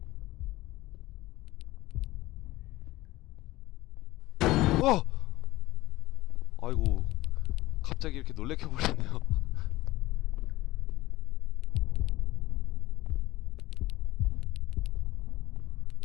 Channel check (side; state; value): right; quieter; 17.7 dB